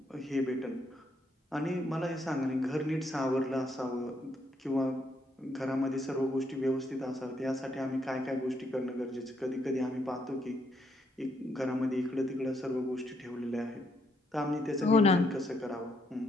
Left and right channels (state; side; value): normal; both; correlation 0.74